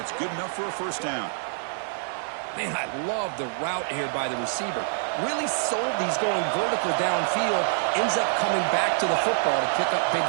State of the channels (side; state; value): left; silent; 56 dB below the other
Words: good enough for a first down. Man, I love the route here by the receiver. Really sold these going vertical downfield. Ends up coming back to the football to pick up big